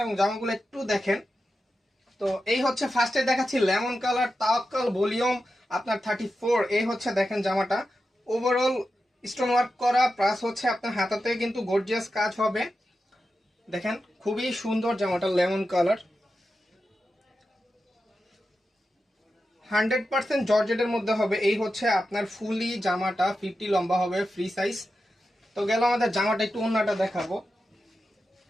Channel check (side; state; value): both; normal; correlation 0.90